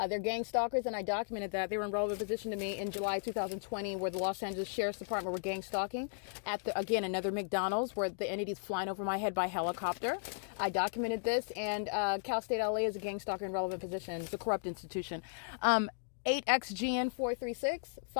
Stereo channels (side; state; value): right; silent; digital silence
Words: They're gang stalkers, and I documented that. They were in relevant position to me in July 2020, where the Los Angeles Sheriff's Department were gang stalking at again another McDonald's, where the entity's flying over my head by helicopter. I documented this, and Cal State LA is a gang stalker in relevant position. It's a corrupt institution. 8XGN436,